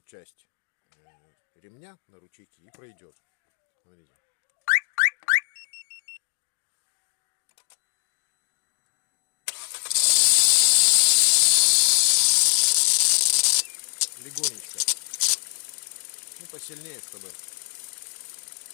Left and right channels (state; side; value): silent; right; digital silence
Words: часть ремня, на ручейки, и пройдет. Смотрите. Легонечко. Ну, посильнее, чтобы...